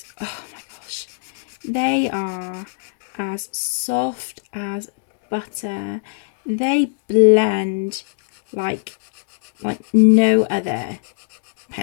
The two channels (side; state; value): right; silent; digital silence